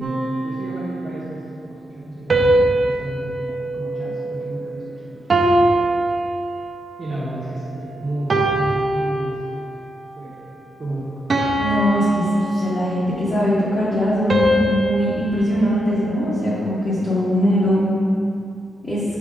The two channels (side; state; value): both; normal; correlation 0.82